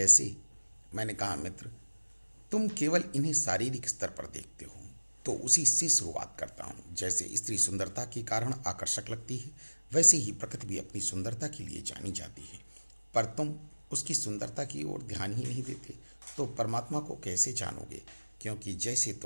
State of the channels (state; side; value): inverted; both; correlation -1.00